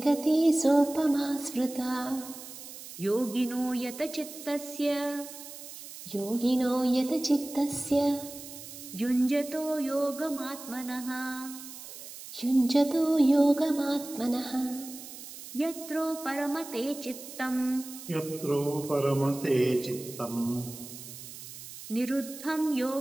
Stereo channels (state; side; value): noise; right; hiss, 13 dB below the sound